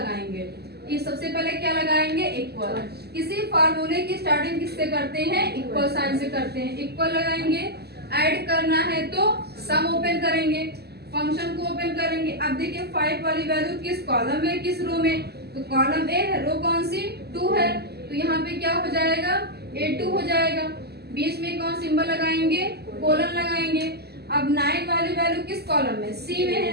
ये सबसे पहले क्या लगाएंगे, इक्वल. किसी फार्मूले की स्टार्टिंग किससे करते हैं, इक्वल साइन से करते हैं. इक्वल लगाएंगे, ऐड करना है तो सम ओपन करेंगे, फंक्शन को ओपन करेंगे. अब देखिए 5 वाली वैल्यू किस कॉलम में किस रो में, तो कॉलम ए है, रो कौन सी 2 है, तो यहाँ पे क्या हो जाएगा A2 हो जाएगा. बीच में कौन सिंबल लगाएंगे, कोलन लगाएंगे. अब 9 वाली वैल्यू किस कॉलम में, सी में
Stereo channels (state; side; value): late; left; 0.47 ms